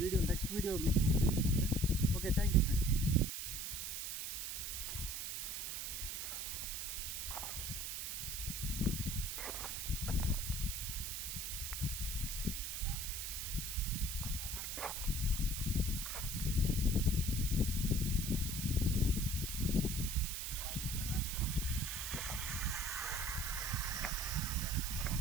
నెక్స్ట్ వీడియో మీకు చూపిస్తాను friends. Okay, thank you friends.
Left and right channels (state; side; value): noise; right; hiss, 4 dB below the sound